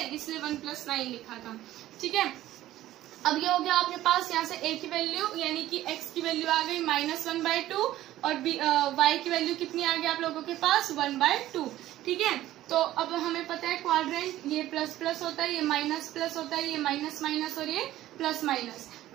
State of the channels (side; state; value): left; quieter; 14.4 dB